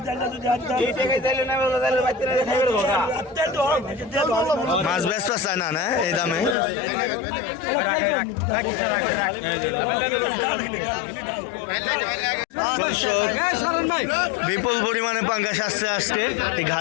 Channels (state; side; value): drops out; right; at 6.6 s